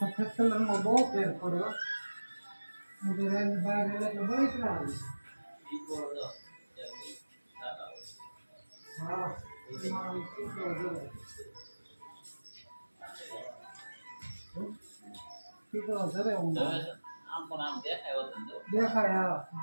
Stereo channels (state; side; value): inverted; both; correlation -1.00